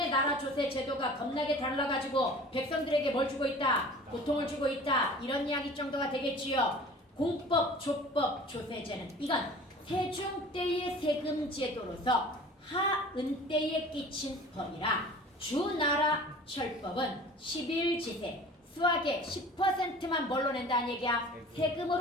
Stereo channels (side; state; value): both; normal; correlation 0.43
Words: 나라 조세 제도가 겁나게 달라가지고 백성들에게 뭘 주고 있다? 고통을 주고 있다. 이런 이야기 정도가 되겠지요. 공법, 조법, 조세제는 이건 세종 때의 세금 제도로서 하은 때에 끼친 법이라 주나라 철법은 11지세 수학의 10%만 뭘로 낸다는 얘기야?